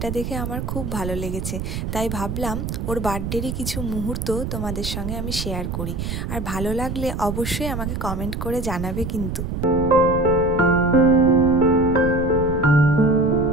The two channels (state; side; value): noise; right; rumble, 4 dB below the sound